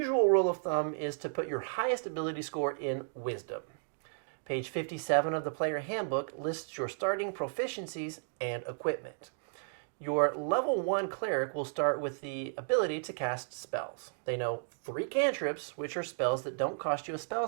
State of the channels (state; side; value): silent; left; digital silence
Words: rule of thumb is to put your highest ability score in Wisdom. Page 57 of the Player Handbook lists your starting proficiencies and equipment. Your level 1 cleric will start with the ability to cast spells. They know 3 cantrips, which are spells that don't cost you a spell